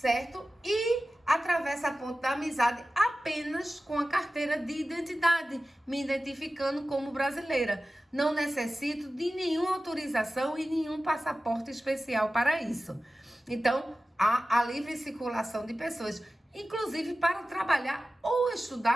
E atravesso a Ponte da Amizade apenas com a carteira de identidade, me identificando como brasileira. Não necessito de nenhuma autorização e nenhum passaporte especial para isso. Então, há a livre circulação de pessoas, inclusive para trabalhar ou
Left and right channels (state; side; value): normal; both; correlation 0.95